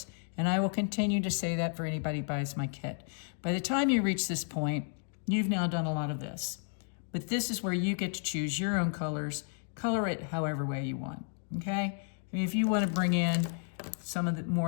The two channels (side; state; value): right; silent; 56 dB below the other